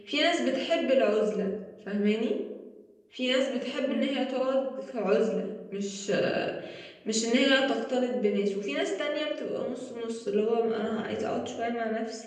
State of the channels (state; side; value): identical; both; correlation 1.00